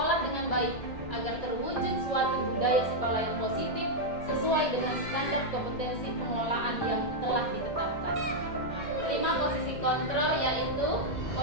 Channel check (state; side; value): late; right; 1.7 ms